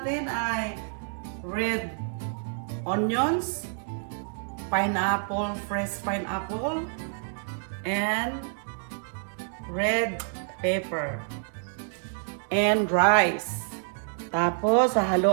ay red onions, pineapple, fresh pineapple, and red pepper, and rice. Tapos,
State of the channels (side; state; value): left; silent; digital silence